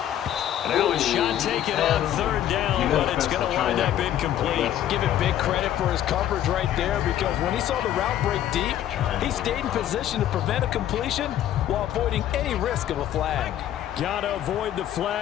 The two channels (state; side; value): quieter; right; 11.6 dB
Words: Now a shot taken on third down, but it's going to wind up incomplete. Give it big credit for his coverage right there, because when he saw the route break deep, he stayed in position to prevent a completion while avoiding any risk of a flag. Got to avoid the